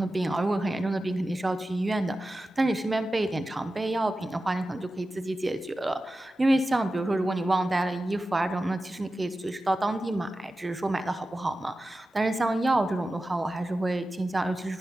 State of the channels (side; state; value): both; normal; correlation 0.93